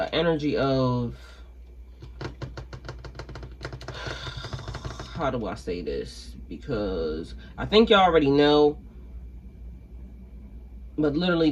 energy of, how do I say this? Because I think y'all already know, but literally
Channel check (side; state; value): both; identical; correlation 1.00